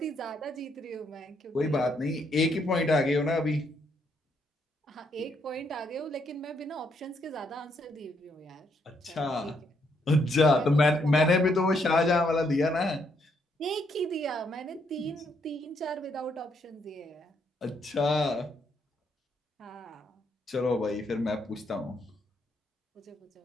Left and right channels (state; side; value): normal; both; correlation 0.74